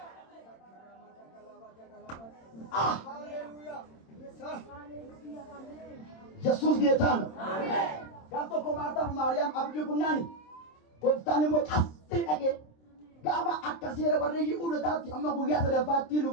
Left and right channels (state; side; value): late; right; 26 ms